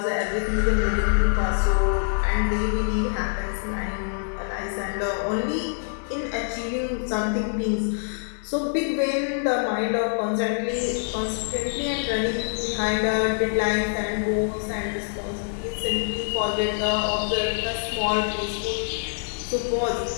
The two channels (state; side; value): silent; right; digital silence